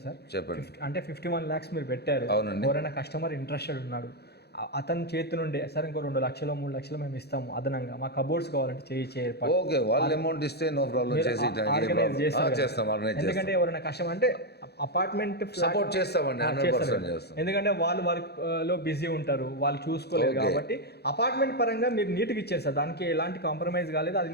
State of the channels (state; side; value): late; right; 0.48 ms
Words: సార్, చెప్పండి. అంటే 51 lakhs మీరు పెట్టారు, ఎవరైనా కస్టమర్ ఇంట్రెస్టెడ్ ఉన్నాడు, అతని చేతి నుండి సార్ ఇంకో 2 లక్షలు 3 లక్షలు మేము ఇస్తాము అదనంగా, మా కబోర్డ్స్ కావాలంటే ఓకే, వాళ్ళ అమౌంట్ ఇస్తే నో ప్రాబ్లం, చేస్తాం. ఎందుకంటే ఎవరైనా కస్టమర్ అంటే అపార్ట్మెంట్ సపోర్ట్ చేస్తామండి, 100% చేస్తాం. ఎందుకంటే వాళ్ళు వర్క్ లో బిజీ ఉంటారు, వాళ్ళు చూసుకోలేదు కాబట్టి అపార్ట్మెంట్ పరంగా మీరు నీట్గా ఇచ్చారు సార్, దానికి ఎలాంటి కాంప్రమైజ్ కాలేదు, అది